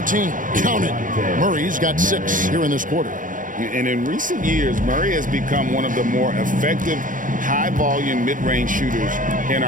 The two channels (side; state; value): left; late; 0.38 ms